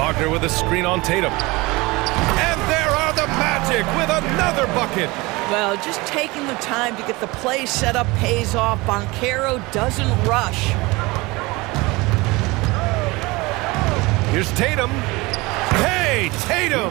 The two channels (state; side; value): quieter; left; 23.1 dB